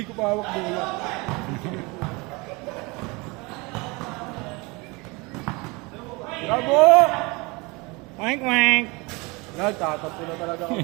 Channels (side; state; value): left; quieter; 26.3 dB